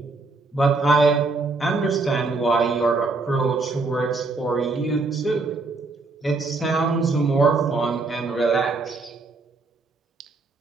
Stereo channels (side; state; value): left; quieter; 3.6 dB